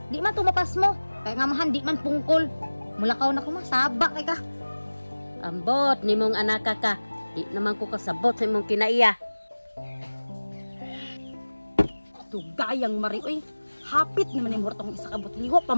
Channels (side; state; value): both; inverted; correlation -1.00